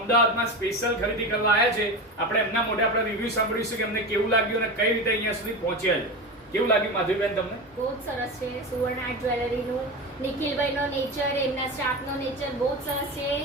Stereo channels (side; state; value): both; normal; correlation 0.24